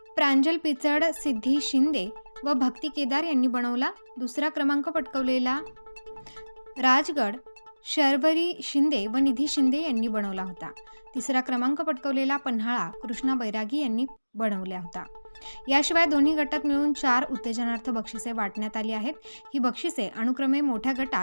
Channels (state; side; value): inverted; both; correlation -1.00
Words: प्रांजल पिचड, सिद्धी शिंदे व भक्ती केदार यांनी बनवला। दुसरा क्रमांक पटकावलेला राजगड शर्वरी शिंदे व निधी शिंदे यांनी बनवला होता। तिसरा क्रमांक पटकावलेला पन्हाळा कृष्णा बैरागी यांनी बनवला होता। याशिवाय दोन्ही गटात मिळून 4 उत्तेजनार्थ बक्षिसे वाटण्यात आली आहेत। ही बक्षिसे अनुक्रमे मोठ्या